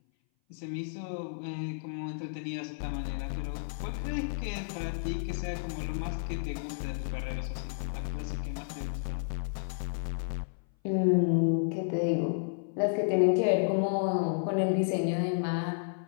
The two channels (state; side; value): silent; right; 57 dB below the other